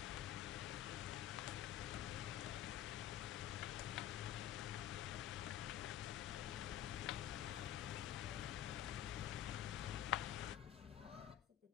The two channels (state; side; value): quieter; right; 11.7 dB